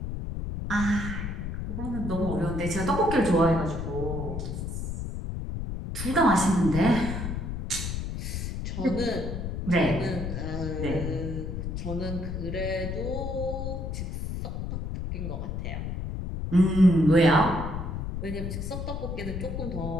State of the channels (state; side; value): noise; left; rumble, 4 dB below the sound